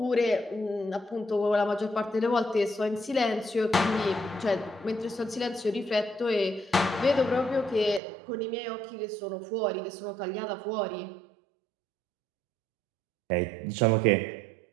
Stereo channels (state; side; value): drops out; left; at 8.0 s